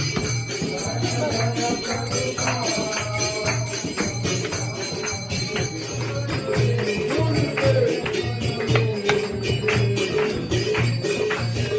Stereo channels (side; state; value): both; identical; correlation 1.00